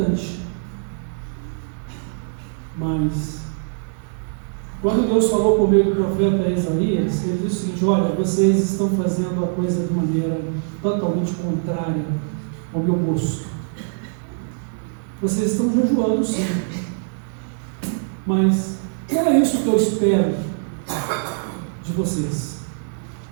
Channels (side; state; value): left; silent; digital silence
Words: Mas quando Deus falou por meio do profeta Isaías, ele disse o seguinte: olha, vocês estão fazendo a coisa de maneira totalmente contrária ao meu gosto. Vocês estão jejuando, sim, mas não é isso que eu espero de vocês.